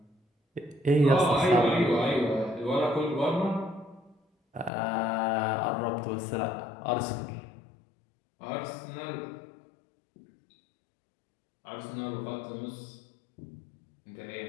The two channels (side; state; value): right; drops out; at 4.7 s